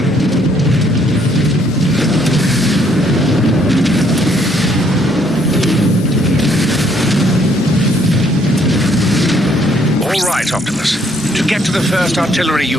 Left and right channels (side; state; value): both; normal; correlation 0.67